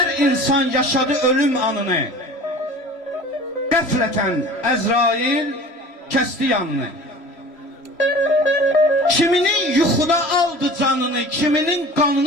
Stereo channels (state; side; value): late; right; 3.1 ms